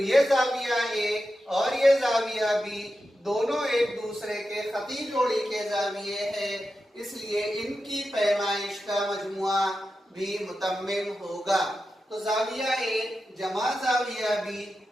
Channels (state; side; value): normal; both; correlation 0.90